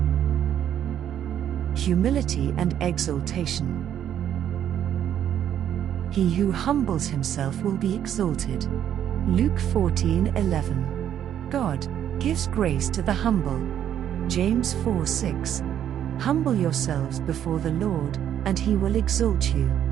Humility and exaltation. He who humbles himself will be exalted. Luke 14:11. God gives grace to the humble. James 4:6. Humble yourselves before the Lord, and he will exalt you.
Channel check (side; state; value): left; quieter; 10.1 dB